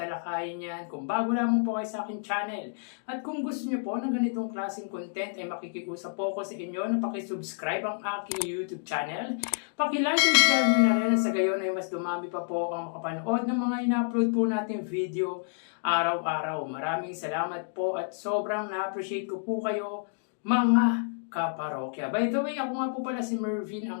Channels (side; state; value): right; silent; digital silence